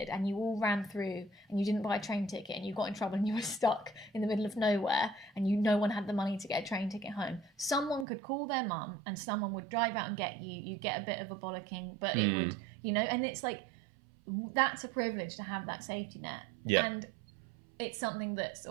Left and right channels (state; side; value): drops out; left; at 8.1 s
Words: and you all ran through and you didn't buy a train ticket and you got in trouble and you were stuck in the middle of nowhere and no one had the money to get a train ticket home, someone could call their mum and someone would drive out and get you. You get a bit of a bollocking, but it would, you know, and it's like, that's a privilege to have that safety net. Yeah. And it's something that's